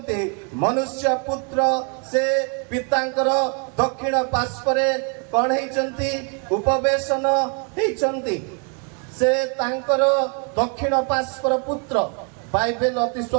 ମନୁଷ୍ୟ ପୁତ୍ର ସେ ପିତାଙ୍କର ଦକ୍ଷିଣ ପାର୍ଶ୍ୱରେ କଣ ହେଇଛନ୍ତି? ଉପବେଶନ ହେଇଛନ୍ତି। ସେ ତାଙ୍କର ଦକ୍ଷିଣ ପାର୍ଶ୍ୱର ପୁତ୍ର। ବାଇବେଲ ଅତି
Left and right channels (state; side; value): quieter; left; 38.1 dB